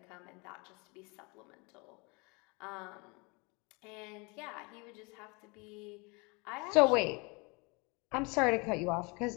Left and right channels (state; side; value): quieter; right; 29.1 dB